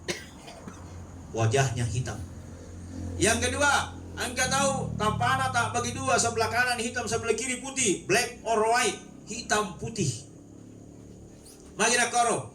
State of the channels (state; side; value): identical; both; correlation 1.00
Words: Wajahnya hitam. Yang kedua, angka tahu tapana tak bagi 2, sebelah kanan hitam, sebelah kiri putih, black or white, hitam putih. Magina koro